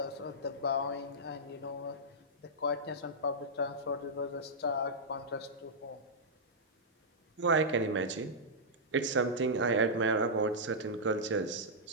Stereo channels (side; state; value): both; normal; correlation -0.10